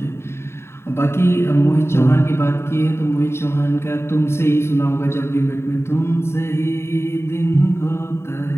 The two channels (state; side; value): late; right; 0.12 ms